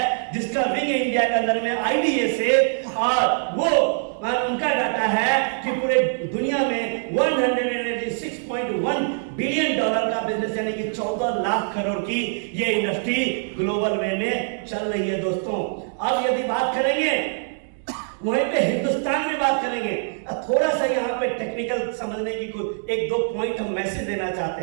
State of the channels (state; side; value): silent; left; digital silence